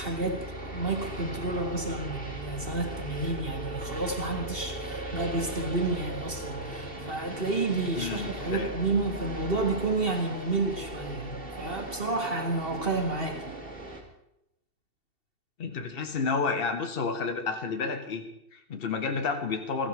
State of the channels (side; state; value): right; late; 2.7 ms